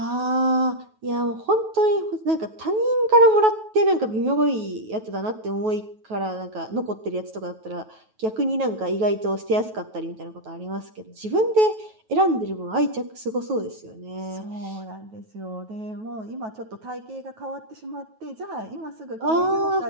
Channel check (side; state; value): left; late; 9.2 ms